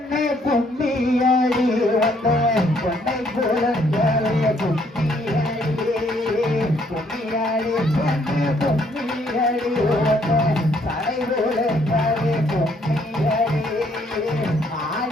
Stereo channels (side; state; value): both; normal; correlation 0.67